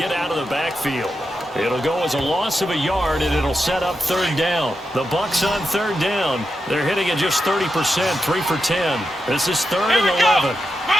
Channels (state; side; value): normal; both; correlation 0.87